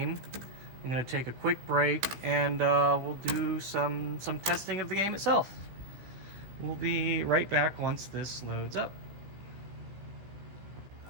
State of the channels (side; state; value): left; late; 16 ms